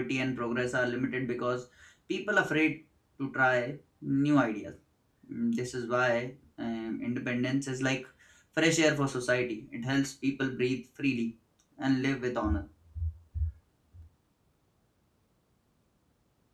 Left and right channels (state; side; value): identical; both; correlation 1.00